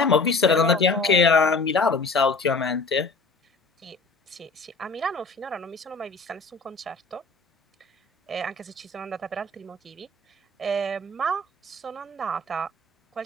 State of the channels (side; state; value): right; quieter; 3.4 dB